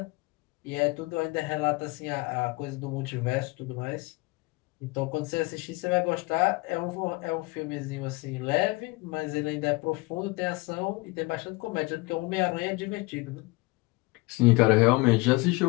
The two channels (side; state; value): right; quieter; 24.4 dB